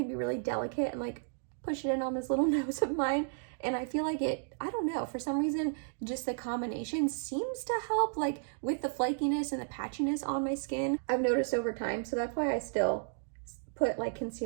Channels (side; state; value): left; silent; digital silence